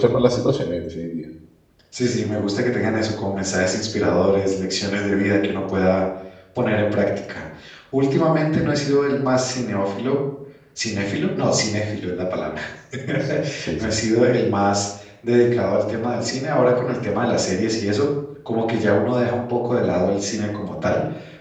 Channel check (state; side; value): identical; both; correlation 1.00